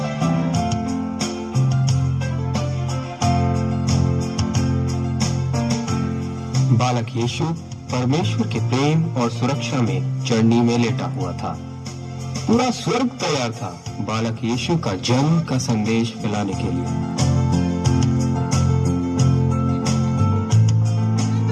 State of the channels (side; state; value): both; identical; correlation 1.00